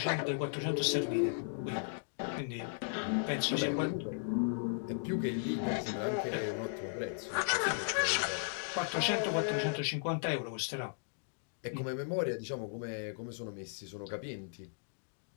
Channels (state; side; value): silent; right; digital silence